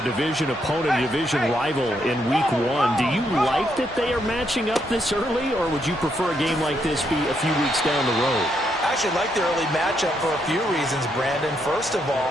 division opponent, division rival in week 1. Do you like that they are matching up this early, or would you prefer a game like this be a few weeks down the road? I actually like the early matchup for a few reasons, Brandon. First of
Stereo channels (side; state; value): both; normal; correlation 0.77